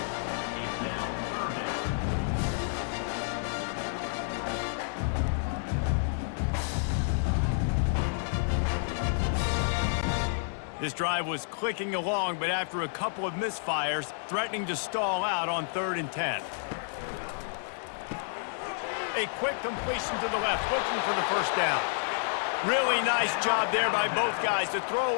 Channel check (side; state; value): right; silent; 58 dB below the other